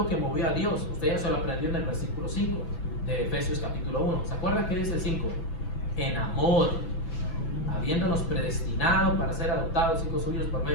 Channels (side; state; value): right; late; 6.0 ms